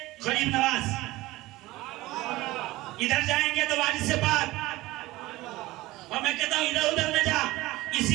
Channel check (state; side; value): quieter; left; 18.9 dB